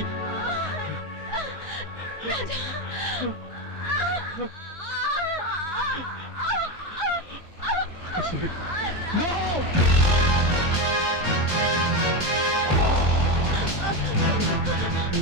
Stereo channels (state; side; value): late; right; 3.0 ms